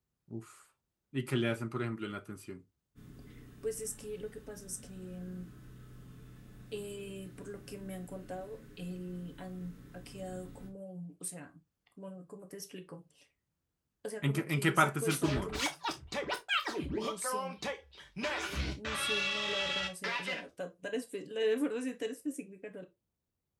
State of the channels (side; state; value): both; identical; correlation 1.00